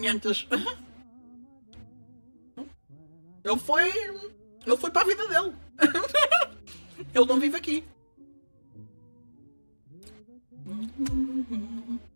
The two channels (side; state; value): both; inverted; correlation -1.00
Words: Ele foi para a vida dele. Ele não vive aqui.